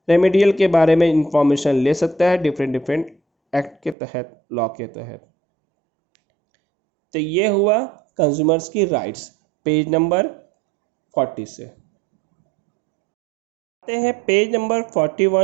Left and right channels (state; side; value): drops out; left; at 4.0 s